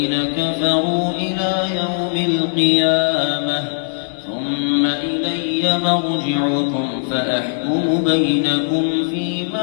كفروا إلى يوم القيامة ثم إلي مرجعكم فأحكم بينكم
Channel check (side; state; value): right; silent; digital silence